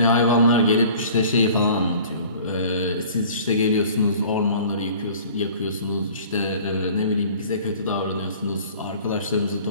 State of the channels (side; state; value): both; inverted; correlation -0.48